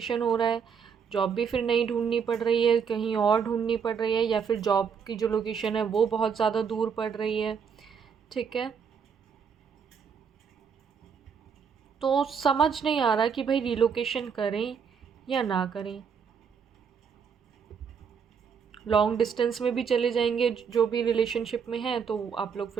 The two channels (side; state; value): left; quieter; 6.6 dB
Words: हो रहा है। जॉब भी फिर नई ढूंढनी पड़ रही है, कहीं और ढूंढनी पड़ रही है, या फिर जॉब की जो लोकेशन है वो बहुत ज़्यादा दूर पड़ रही है, ठीक है। तो समझ नहीं आ रहा कि भाई रीलोकेशन करें या ना करें। लॉन्ग डिस्टेंस में भी चले जाएंगे, जो भी रिलेशनशिप में है, तो आप लोग